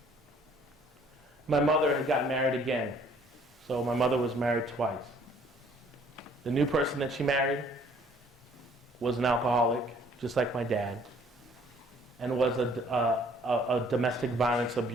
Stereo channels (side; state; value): both; normal; correlation 0.59